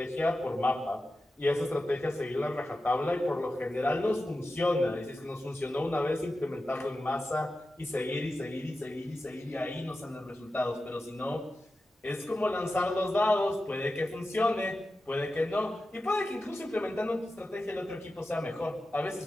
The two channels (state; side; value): normal; both; correlation 0.92